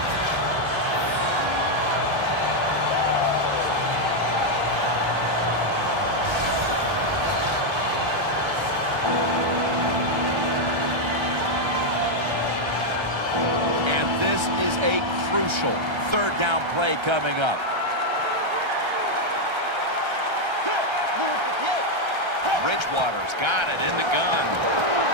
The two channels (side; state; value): left; late; 1.3 ms